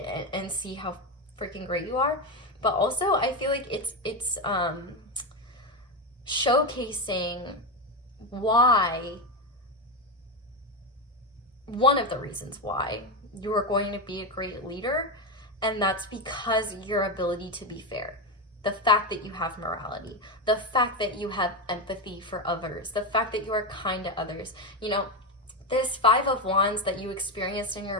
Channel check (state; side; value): normal; both; correlation 0.12